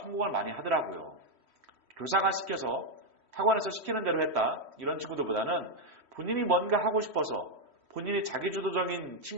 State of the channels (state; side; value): late; left; 3.1 ms